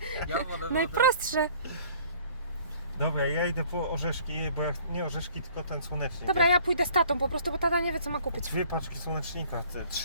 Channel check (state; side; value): inverted; both; correlation -0.54